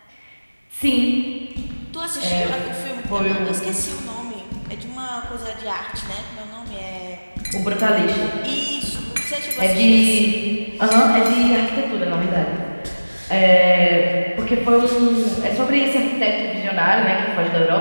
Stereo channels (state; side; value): inverted; both; correlation -1.00